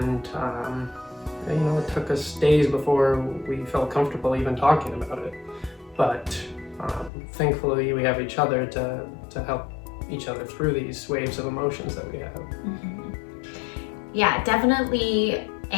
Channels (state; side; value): drops out; right; at 7.1 s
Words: it took us days before we felt comfortable even talking about it. But thankfully we have each other to help each other through these waves of emotions that we have. Mm-hmm. Yeah, definitely